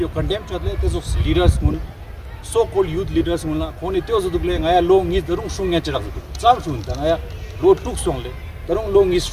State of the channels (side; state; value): both; identical; correlation 1.00